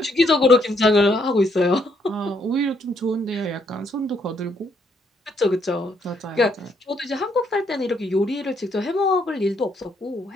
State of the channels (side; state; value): both; normal; correlation 0.72